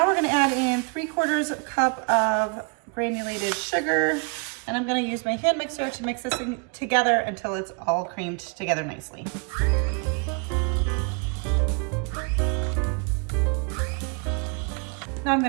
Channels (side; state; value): left; quieter; 36.8 dB